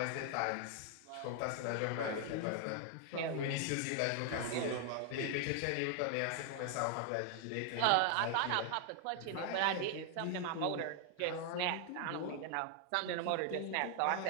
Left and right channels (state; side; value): different; both; correlation 0.00